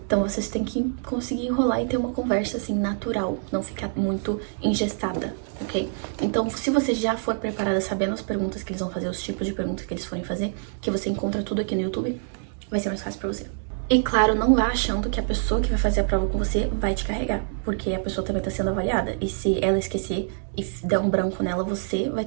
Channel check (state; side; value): silent; left; digital silence